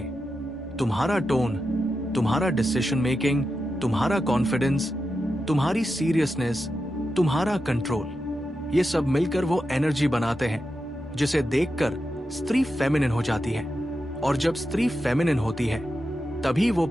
तुम्हारा टोन, तुम्हारा डिसीजन मेकिंग, तुम्हारा कॉन्फिडेंस, तुम्हारी सीरियसनेस, तुम्हारा कंट्रोल, ये सब मिलकर वो एनर्जी बनाते हैं जिसे देखकर स्त्री फेमिनिन हो जाती है। और जब स्त्री फेमिनिन होती है तभी वो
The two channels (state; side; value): normal; both; correlation 0.89